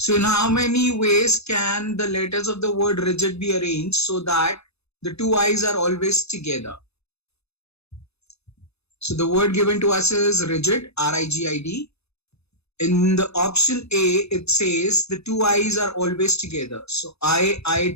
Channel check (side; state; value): right; late; 0.79 ms